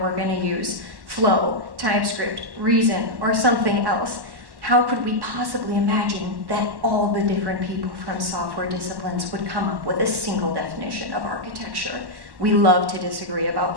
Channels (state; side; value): late; left; 1.1 ms